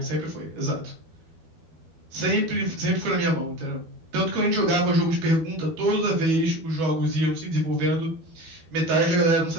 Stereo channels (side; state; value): left; late; 12 ms